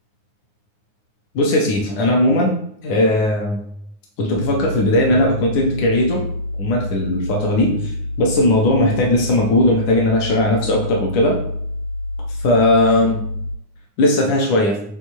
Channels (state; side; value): late; right; 9.6 ms